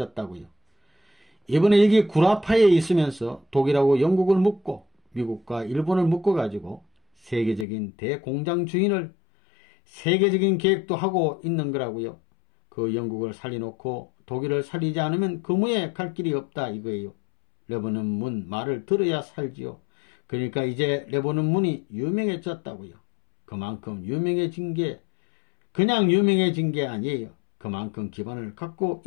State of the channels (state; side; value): drops out; right; at 7.7 s